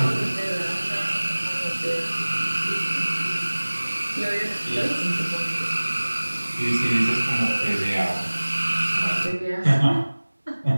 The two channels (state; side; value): inverted; both; correlation -1.00